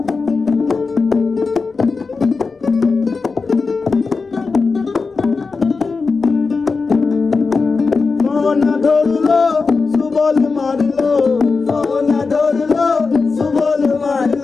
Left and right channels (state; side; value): quieter; right; 4.4 dB